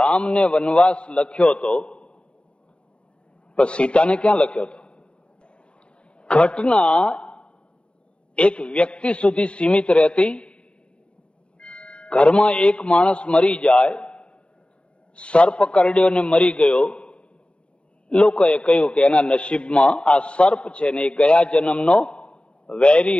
વનવાસ લખ્યો તો પણ સીતાને ક્યાં લખ્યો હતો? ઘટના એક વ્યક્તિ સુધી સીમિત રહેતી. ઘરમાં એક માણસ મરી જાય, સર્પ કરડ્યો ને મરી ગયો, લોકોએ કહ્યું કે એના નસીબમાં આ સર્પ છે ને એ ગયા જન્મનો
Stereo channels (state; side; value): late; right; 0.055 ms